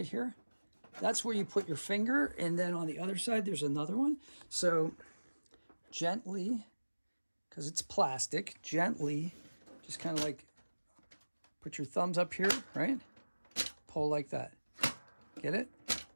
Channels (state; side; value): inverted; both; correlation -1.00